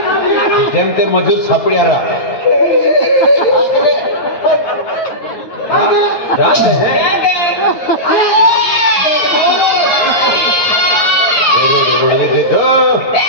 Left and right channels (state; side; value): late; right; 9.5 ms